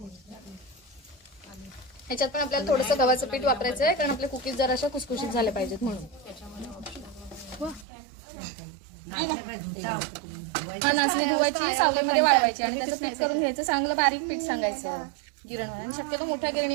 ह्याच्यात पण आपल्याला थोडंसं गव्हाचं पीठ वापरायचं आहे, कारण आपले कुकीज जरा अशा खुसखुशीत झाले पाहिजेत म्हणून. हा, नाचणी धुवायची, सावलीमध्ये वाळवायची आणि त्याचं पीठ करून घ्यायचं. चांगलं बारीक पीठ सांगायचं गिरणीवर. शक्यतो मोठ्या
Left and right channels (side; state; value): left; drops out; at 7.9 s